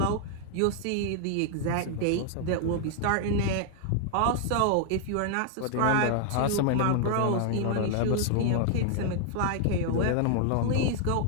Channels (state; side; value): different; both; correlation 0.00